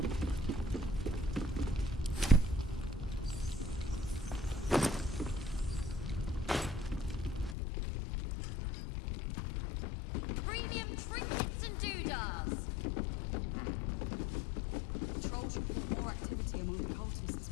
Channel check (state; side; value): drops out; right; at 7.6 s